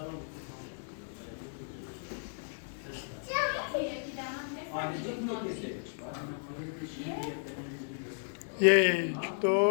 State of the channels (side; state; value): right; silent; digital silence